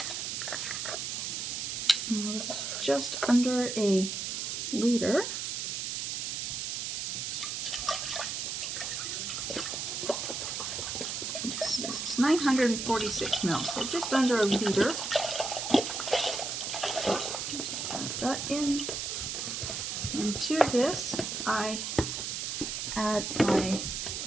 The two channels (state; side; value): noise; right; hiss, 3 dB below the sound